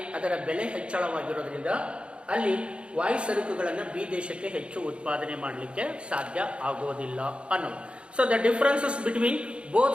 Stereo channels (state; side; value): late; left; 0.058 ms